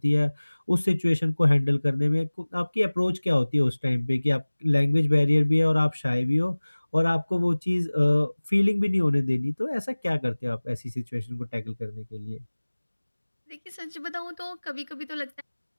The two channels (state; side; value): inverted; both; correlation -1.00